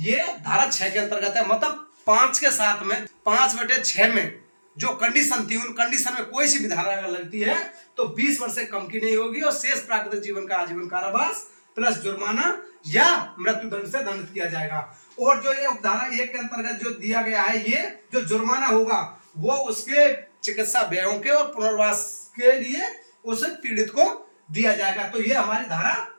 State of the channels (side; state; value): both; inverted; correlation -1.00